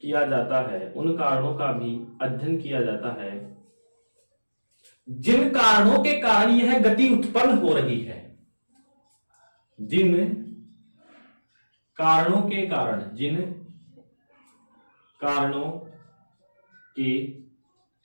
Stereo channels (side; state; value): both; inverted; correlation -1.00